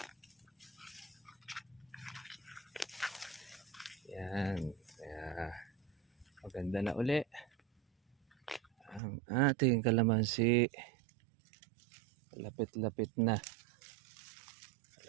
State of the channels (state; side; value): drops out; left; at 9.0 s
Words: Yan. Kaya maganda na uli ang ating kalamansi. Lapit-lapit na.